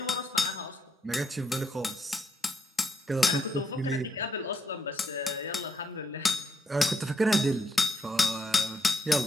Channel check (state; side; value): normal; both; correlation 0.76